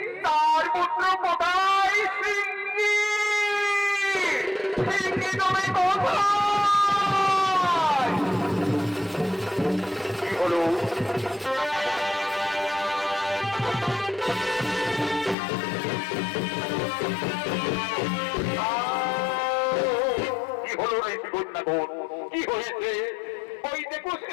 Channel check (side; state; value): right; drops out; at 15.4 s